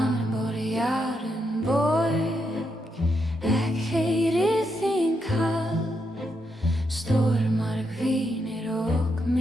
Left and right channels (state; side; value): normal; both; correlation 0.81